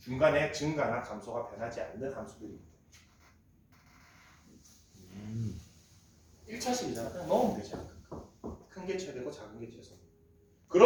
중간에 증가나 감소가 변하지 않는 함수들입니다. 1차식이잖아. 그냥 넣으면 되지 양 끝값. 큰 게 최대고 작은 게 최소.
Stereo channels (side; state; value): both; identical; correlation 1.00